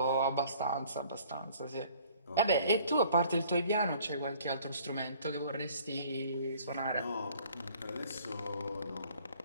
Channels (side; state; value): both; inverted; correlation -0.55